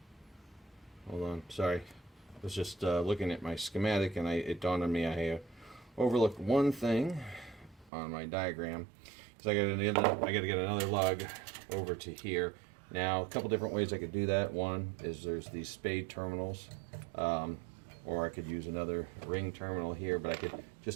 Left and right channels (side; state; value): left; drops out; at 7.9 s